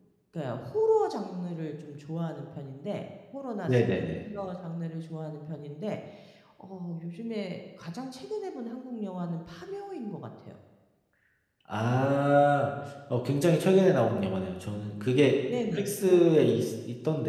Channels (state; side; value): identical; both; correlation 1.00